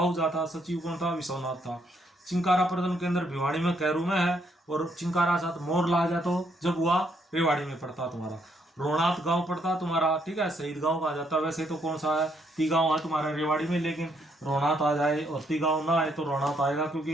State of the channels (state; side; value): normal; both; correlation 0.72